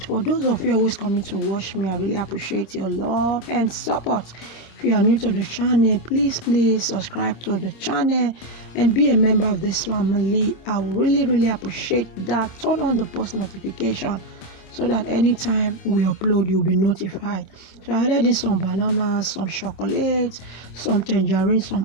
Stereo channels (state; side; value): late; right; 26 ms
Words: For those of you always coming to watch me, I really appreciate your love and support. If you are new to the channel, please subscribe to the channel and be a member of this family. I will really appreciate that. Turn on the post notification so that anytime we upload, you'll be notified. So I added in some bananas, some chocolate, some tangerine,